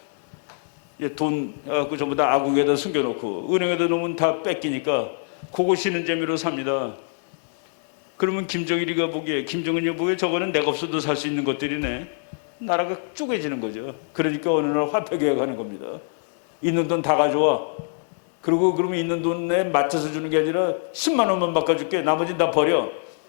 돈 갖고 전부 다 아궁에다 숨겨놓고 은행에다 놓으면 다 뺏기니까 그거 쉬는 재미로 삽니다. 그러면 김정은이 보기에 저거는 내가 없어도 살 수 있는 것들이네. 나라가 쪼개지는 거죠. 그러니까 어느 날 화폐 개혁하는 겁니다. 있는 돈 다 가져와. 그리고 그러면 있는 돈에 맞춰서 주는 게 아니라 10만 원만 바꿔줄게. 나머지는 다 버려.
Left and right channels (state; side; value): silent; right; digital silence